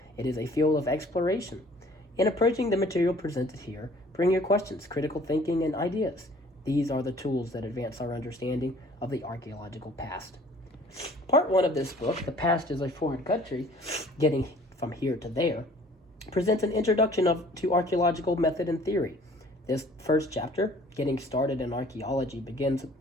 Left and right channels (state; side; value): normal; both; correlation 0.53